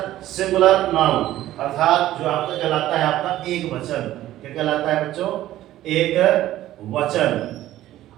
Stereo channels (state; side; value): quieter; left; 14.1 dB